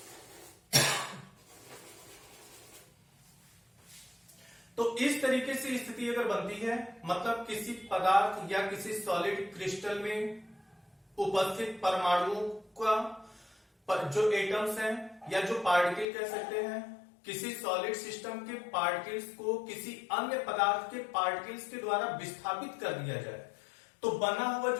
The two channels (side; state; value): right; drops out; at 16.1 s